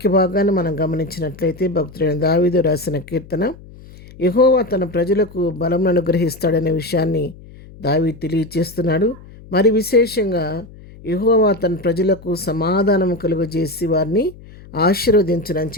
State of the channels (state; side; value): noise; left; hum, 20 dB below the sound